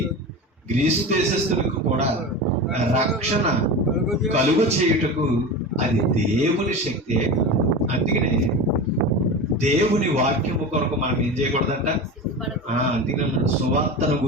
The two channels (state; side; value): normal; both; correlation 0.27